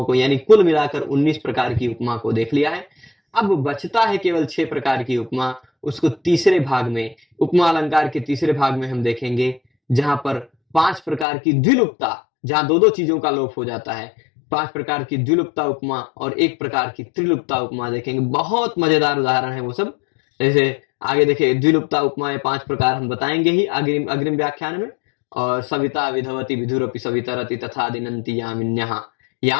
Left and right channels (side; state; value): right; drops out; at 11.2 s